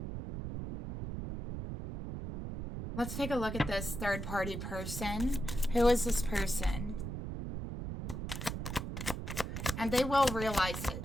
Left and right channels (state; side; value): noise; right; rumble, 5 dB below the sound